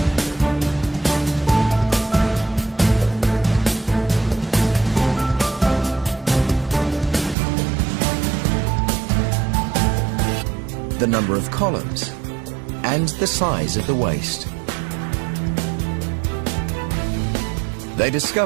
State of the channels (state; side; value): drops out; left; at 7.4 s